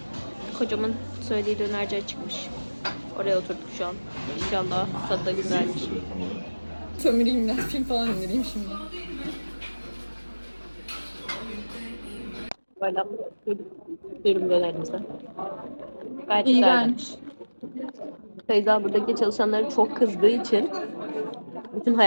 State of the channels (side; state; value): both; inverted; correlation -1.00